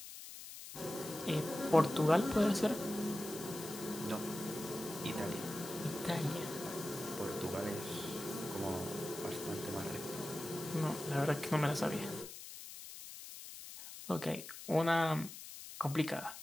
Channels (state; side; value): noise; left; hiss, 12 dB below the sound